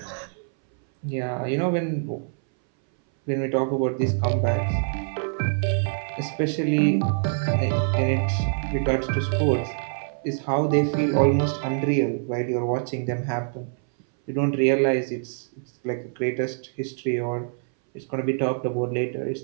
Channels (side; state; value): left; silent; 61 dB below the other